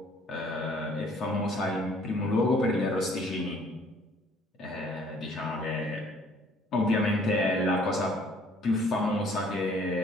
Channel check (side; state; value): both; normal; correlation 0.58